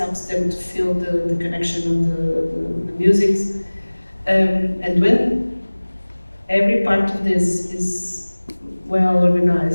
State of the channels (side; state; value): both; inverted; correlation -1.00